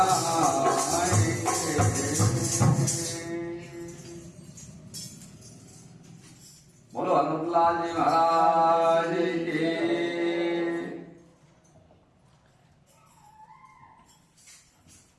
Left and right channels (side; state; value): both; identical; correlation 1.00